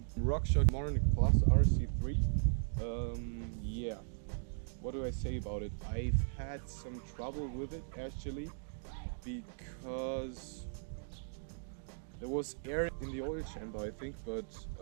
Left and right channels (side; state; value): left; silent; digital silence